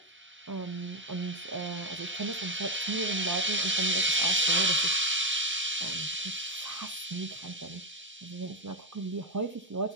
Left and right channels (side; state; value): both; normal; correlation 0.04